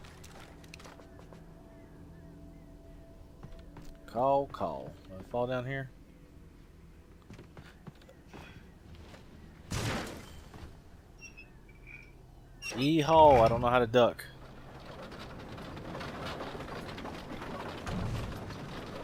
Call, call. Do I fall down here? Yeehaw, I don't know how to duck.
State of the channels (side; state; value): both; identical; correlation 1.00